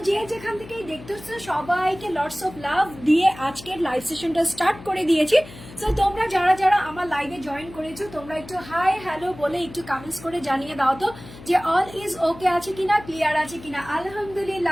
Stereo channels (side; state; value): left; noise; hum, 17 dB below the sound